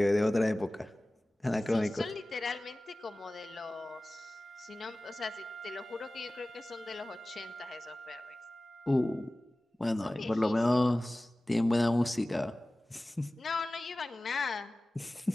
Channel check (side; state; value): both; normal; correlation 0.97